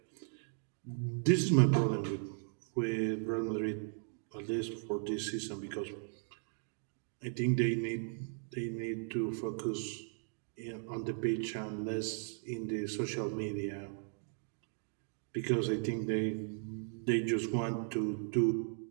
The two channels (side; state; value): left; silent; 53 dB below the other